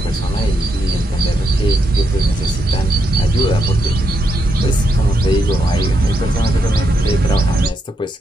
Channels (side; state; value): both; normal; correlation 0.81